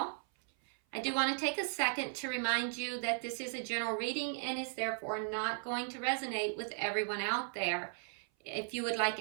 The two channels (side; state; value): left; silent; 53 dB below the other